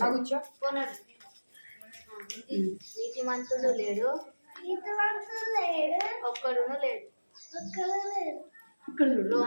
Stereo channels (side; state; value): both; inverted; correlation -1.00